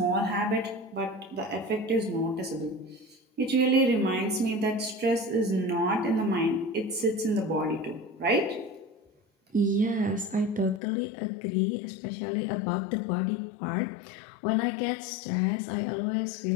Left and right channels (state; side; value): drops out; right; at 10.8 s